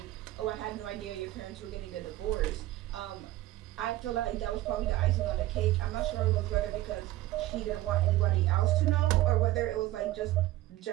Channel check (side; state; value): left; quieter; 16.1 dB